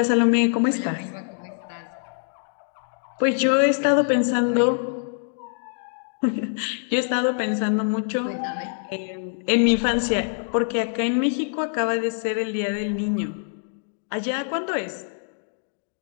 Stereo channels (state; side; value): silent; right; digital silence